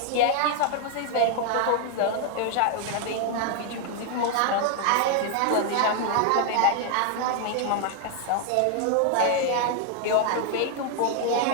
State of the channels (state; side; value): different; both; correlation 0.00